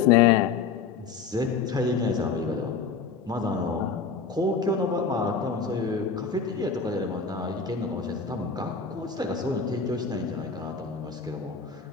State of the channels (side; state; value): right; quieter; 5.5 dB